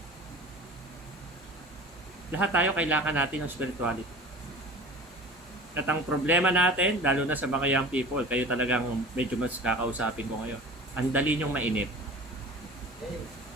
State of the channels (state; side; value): normal; both; correlation 0.39